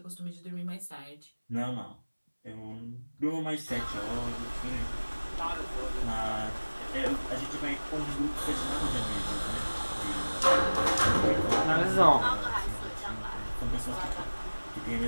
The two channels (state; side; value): inverted; both; correlation -1.00